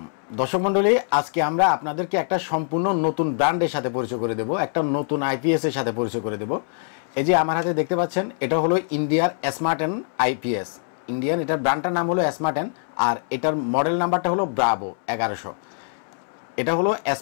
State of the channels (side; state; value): right; silent; 63 dB below the other